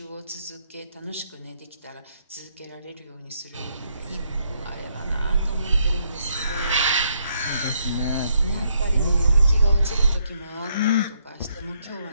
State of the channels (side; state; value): both; inverted; correlation -0.74